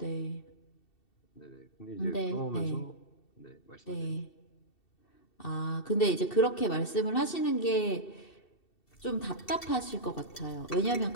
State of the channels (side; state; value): right; late; 2.7 ms